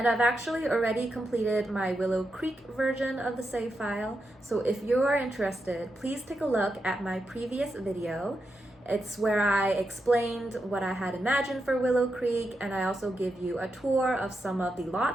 I've actually already completed my Willow Creek version of the save file. So if you are interested, please take a look at my previous video. It's where I explained what I had imagined for Willow Creek, and I also give you a tour of some of the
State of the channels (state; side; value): normal; both; correlation 0.86